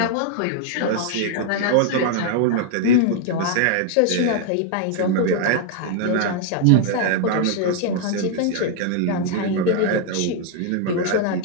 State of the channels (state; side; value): different; both; correlation 0.00